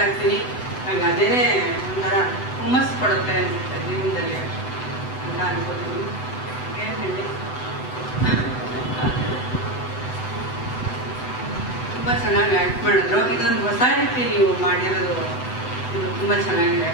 ಇರ್ತೀನಿ. ನನಗೆ ಅದೇನೇ ಒಂಥರ ಹುಮ್ಮಸ್ಸು ಕೊಡುತ್ತೆ ಅನಿಸುತ್ತೆ ಜೀವನದಲ್ಲಿ ಅಂತ ಅನ್ಕೋತೀನಿ. ಏನು ಹೇಳಿ, ತುಂಬ ಚೆನ್ನಾಗಿ ಆ್ಯಕ್ಟ್ ಮಾಡಿದ್ರು. ಇದೊಂದು ಹೊಸ ರೀತಿ ನೀವು ಮಾಡಿರೋದು, ಇದು ತುಂಬ ಚೆನ್ನಾಗಿದೆ.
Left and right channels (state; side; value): late; right; 7.9 ms